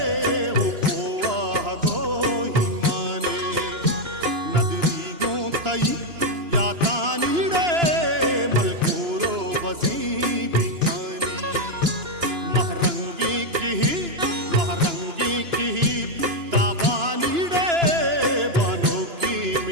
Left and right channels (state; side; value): late; left; 2.9 ms